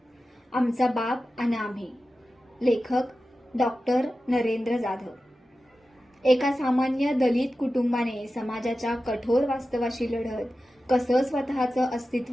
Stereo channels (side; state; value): both; normal; correlation 0.93